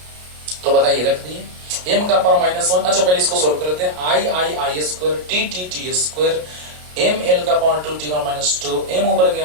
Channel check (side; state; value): left; late; 33 ms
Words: तो बताइए रख दिए m का पावर माइनस 1। अच्छा पहले इसको सोल्व करते हैं। I square t square m l का पावर 2 t का माइनस 2, m ऊपर